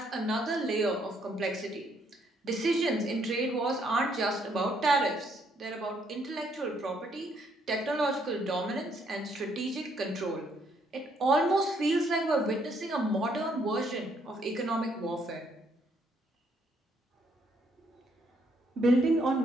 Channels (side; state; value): both; normal; correlation 0.70